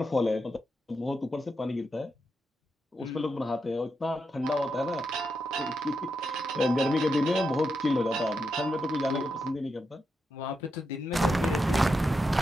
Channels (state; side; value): normal; both; correlation 0.85